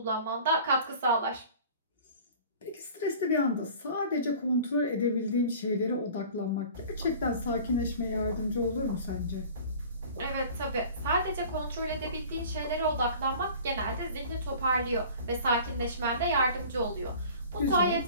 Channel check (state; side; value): inverted; both; correlation -0.44